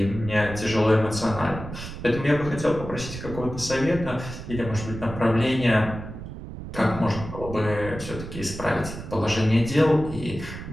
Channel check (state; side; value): noise; right; rumble, 10 dB below the sound